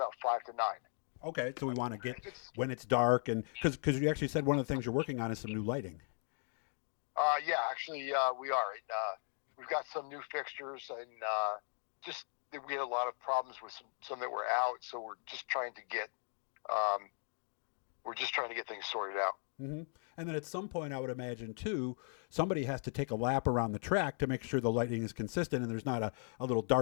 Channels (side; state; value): right; silent; 53 dB below the other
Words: 5 to 9. Okay. So we want to get when it's dark, and because you actually said one of the things you're working on is some new lighting. Yeah, actually, we are. We've got some new fixtures, and we had a lot of problems with some that were out, so we're just trying to get things sorted out. Mm-hmm. And then at some point, I would imagine, too, somebody has to take a lap around the track to make sure the lighting is consistent and there's not a little